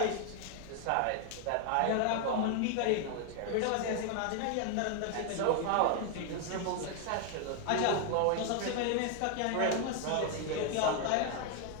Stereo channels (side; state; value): both; different; correlation 0.00